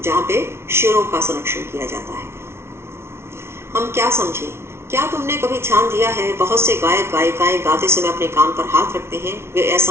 जहाँ पे शेरों का संरक्षण किया जाता है। हम क्या समझे? क्या तुमने कभी ध्यान दिया है बहुत से गायक गायिकाएं गाते समय अपने कान पर हाथ रखते हैं? वे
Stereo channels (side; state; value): left; late; 0.12 ms